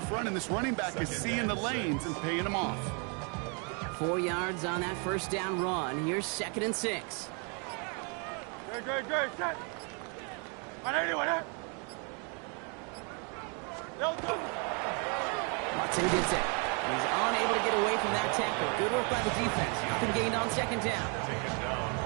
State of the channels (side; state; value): left; quieter; 36.5 dB